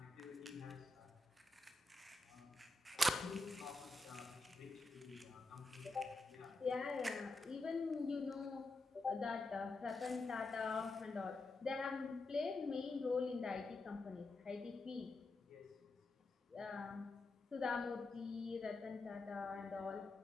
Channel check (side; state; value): right; quieter; 3.1 dB